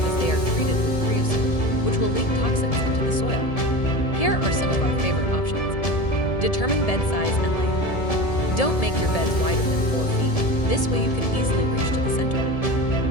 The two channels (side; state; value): right; late; 1.7 ms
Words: they are treated with creosote, which will leak toxins into the soil. Here are some of our favorite options. Determine bed size and layout. Don't make your beds wider than 4 feet. This way you can easily reach to the center.